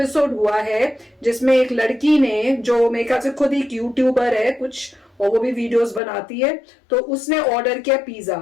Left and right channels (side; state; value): right; drops out; at 6.0 s